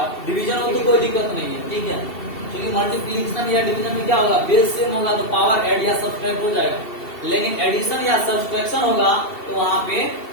डिवीजन हो तो कोई दिक्कत नहीं है। ठीक है, क्योंकि मल्टीप्लिकेशन या डिवीजन में क्या होगा, बेस सेम होगा तो पावर ऐड या सब्ट्रैक्ट हो जाएगा, लेकिन एडिशन या सब्ट्रैक्शन होगा तो वहां पे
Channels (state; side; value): late; right; 2.7 ms